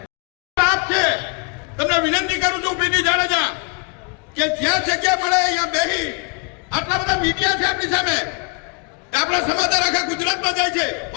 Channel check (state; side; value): quieter; right; 34.6 dB